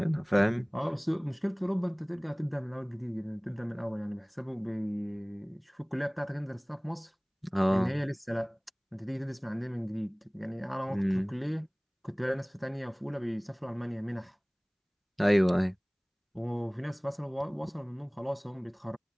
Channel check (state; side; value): identical; both; correlation 1.00